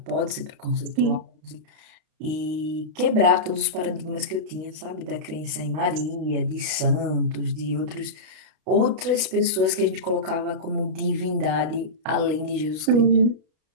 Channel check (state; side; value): late; left; 32 ms